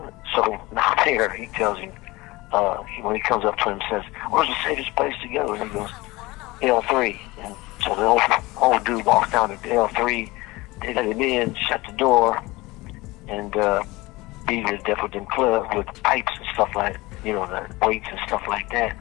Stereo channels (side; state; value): right; quieter; 21.3 dB